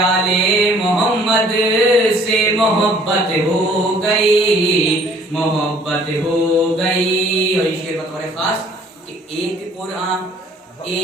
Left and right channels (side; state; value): both; normal; correlation 0.57